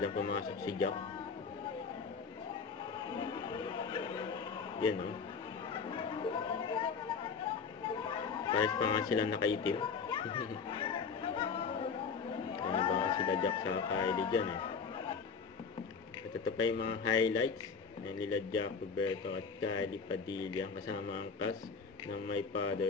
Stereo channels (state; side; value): quieter; right; 5.5 dB